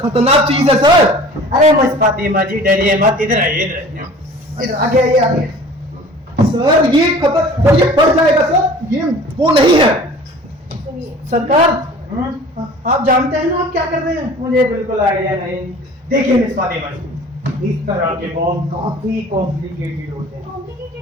चीज है सर। अरे मिस फातिमा जी डरिए मत, इधर आइए, इधर आइए। इधर आगे आइए, आगे। सर ये सर ये बढ़ जाएगा सर, ये वो नहीं है। सुनिए सरकार, आप जानते हैं ना आप क्या कर रहे हैं? मुझे बिल्कुल आइडिया नहीं। देखिए मिस फातिमा जी, इस तरह के बॉम्ब काफी कॉम्प्लिकेटेड होते हैं।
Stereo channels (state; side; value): normal; both; correlation 0.45